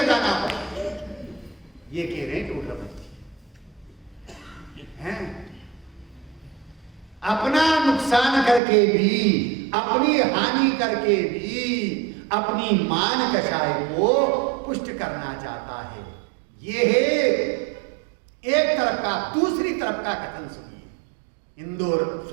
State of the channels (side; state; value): left; drops out; at 8.6 s